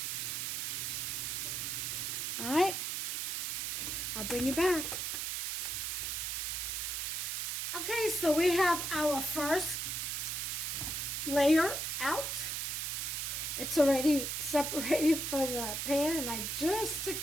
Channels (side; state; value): right; noise; hiss, 1 dB below the sound